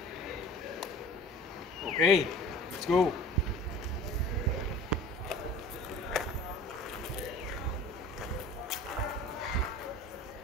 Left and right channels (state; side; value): normal; both; correlation 0.42